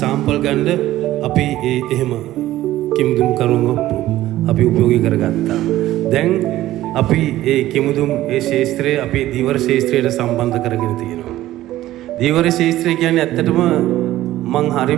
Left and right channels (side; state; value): left; quieter; 14.9 dB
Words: සාම්පල් ගන්න අපි ඒ එහෙම කිමුදුම් කරුම අපි උපයෝගී කරගත්තා. දැන් අපි ඒ කිමුදුම් ඒ ශාස්ත්‍රය අපේ දීවර ශාස්ත්‍රයට සම්බන්ධ කරගෙන තියෙනවා. දීවර ශාස්ත්‍රය කියන්නේ ඇත්තටම මං